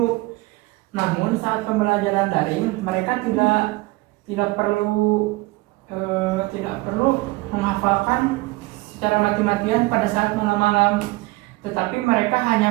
Namun saat pembelajaran daring, mereka tidak perlu menghafalkan secara mati-matian pada saat malam-malam, tetapi mereka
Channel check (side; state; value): left; quieter; 21.9 dB